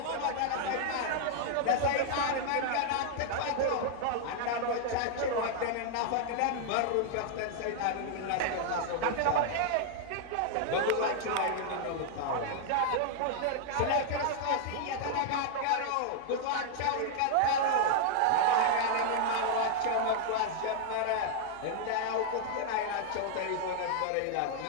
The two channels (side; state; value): both; different; correlation -0.01